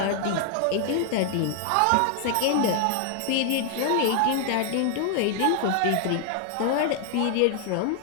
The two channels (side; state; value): both; different; correlation 0.00